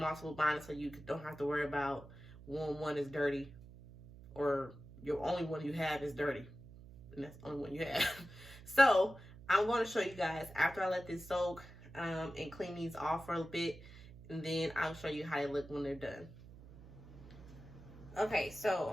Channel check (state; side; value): noise; right; hum, 18 dB below the sound